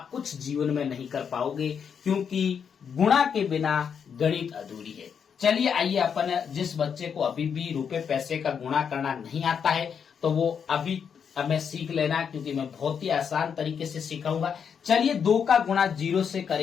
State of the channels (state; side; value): quieter; right; 7.1 dB